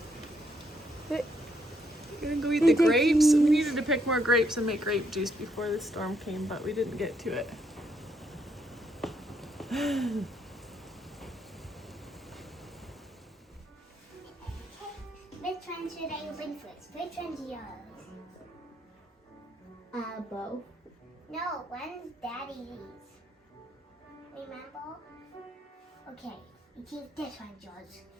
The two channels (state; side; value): normal; both; correlation 0.74